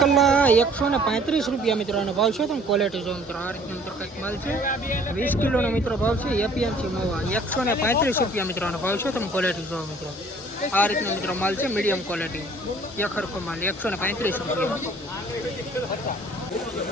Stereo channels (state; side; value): normal; both; correlation 0.54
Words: 135 રૂપિયા મિત્રોનો ભાવ છે. તમે ક્વોલિટી જો મિત્રો આ રીતનો મિત્રો કંઈક માલ છે. 20 કિલોનો મિત્રો ભાવ છે. એપીએમસી મવા 135 રૂપિયા મિત્રોનો ભાવ છે. તમે ક્વોલિટી જો મિત્રો આ રીતનો મિત્રો માલ છે. મીડિયમ ક્વોલિટી એકરખો માલ 135 રૂપિયા.